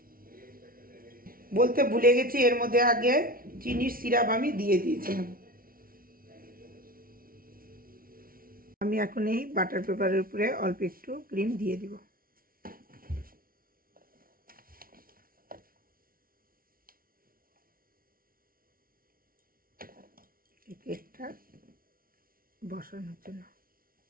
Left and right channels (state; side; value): late; left; 0.42 ms